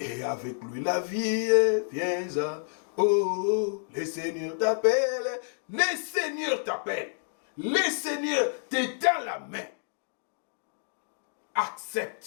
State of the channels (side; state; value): right; silent; digital silence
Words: avec lui la vie, viens à... Oh, le Seigneur t'appelle, le Seigneur t'appelle. Le Seigneur te tend la main.